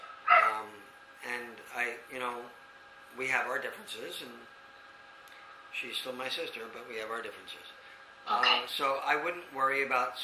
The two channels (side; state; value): both; identical; correlation 1.00